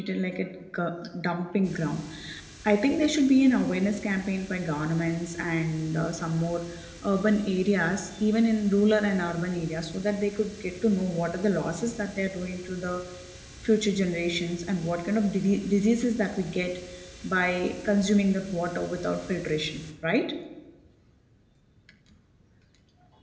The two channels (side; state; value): both; identical; correlation 1.00